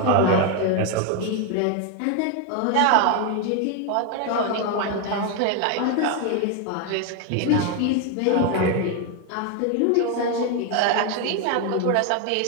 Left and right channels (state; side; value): different; both; correlation 0.01